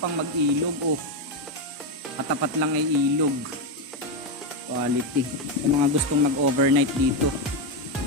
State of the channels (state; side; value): normal; both; correlation 0.07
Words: mag-ilog. Oh, katapat lang ay ilog. Quality. Yung mga gustong mag-overnight dito.